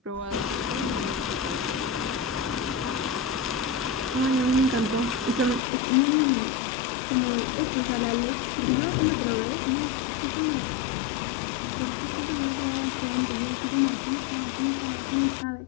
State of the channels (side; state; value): right; drops out; at 5.6 s